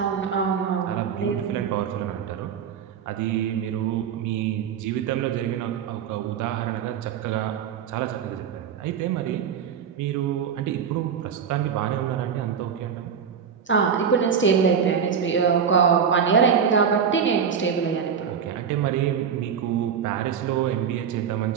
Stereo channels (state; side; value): quieter; left; 7.4 dB